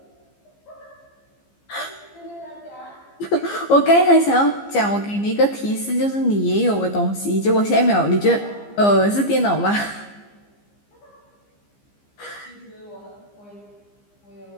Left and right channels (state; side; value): late; right; 15 ms